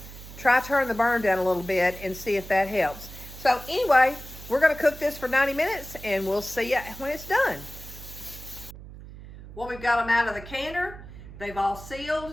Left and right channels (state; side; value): noise; right; hum, 15 dB below the sound